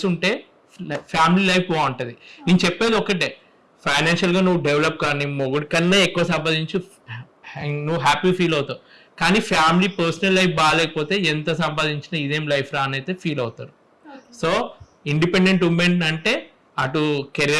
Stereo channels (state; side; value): identical; both; correlation 1.00